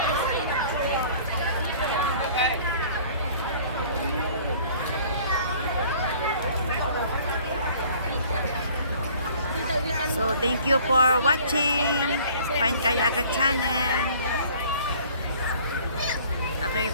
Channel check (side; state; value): both; inverted; correlation -0.52